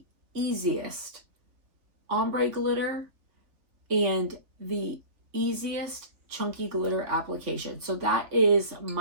easiest ombre glitter and the easiest chunky glitter application. So that is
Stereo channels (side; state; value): left; late; 3.2 ms